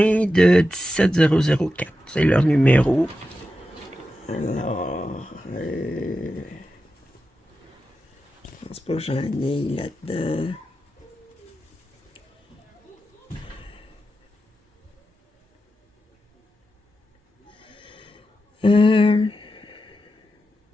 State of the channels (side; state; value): both; normal; correlation 0.90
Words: de 17004. C'est leur numéro. Alors, je pense pas que j'en ai là-dedans.